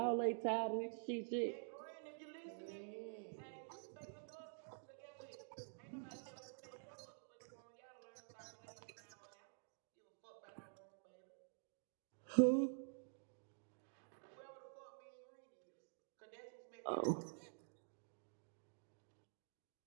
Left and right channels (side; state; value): left; silent; digital silence